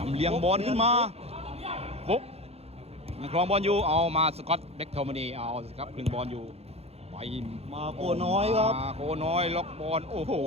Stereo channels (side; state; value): left; late; 0.29 ms